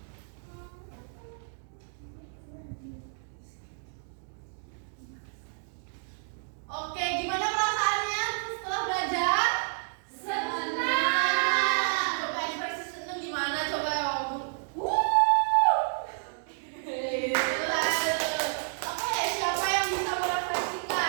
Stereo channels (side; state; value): left; silent; digital silence